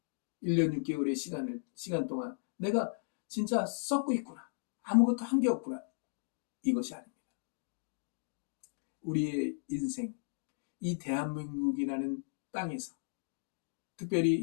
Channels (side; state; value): right; silent; digital silence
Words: 1년 6개월의 시간 동안 내가 진짜 썩고 있구나. 아무것도 한 게 없구나. 이것이 아닙니다. 우리의 인생, 이 대한민국이라는 땅에서 특별히